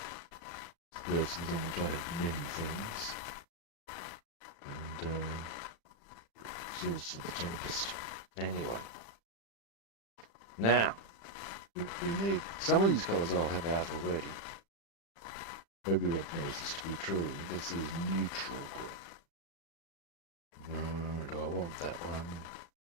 surfaces on which I have many things. And exhaust for the Tempest. Anyway. Now, we need some of these colours I'll have out already. Maybe Rob knows this to be true. This is neutral grey. Do I want that one?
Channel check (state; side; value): late; right; 35 ms